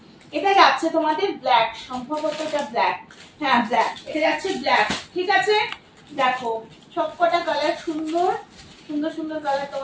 এটা যাচ্ছে তোমাদের ব্ল্যাক, সম্ভবত এটা ব্ল্যাক, হ্যাঁ ব্ল্যাক, এটা যাচ্ছে ব্ল্যাক, ঠিক আছে। দেখো সবকটা কালার সুন্দর সুন্দর সুন্দর কালার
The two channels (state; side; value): identical; both; correlation 1.00